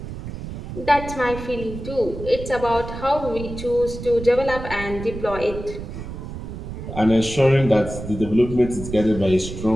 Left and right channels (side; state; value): right; noise; rumble, 9 dB below the sound